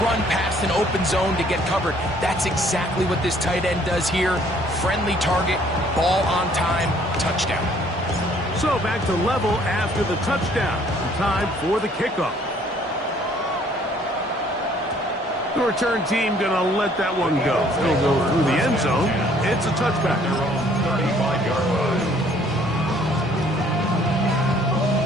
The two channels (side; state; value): both; normal; correlation 0.60